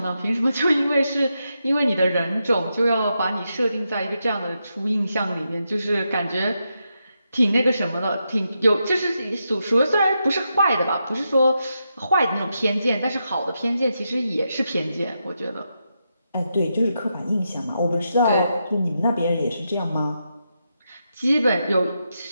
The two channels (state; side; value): inverted; both; correlation -0.85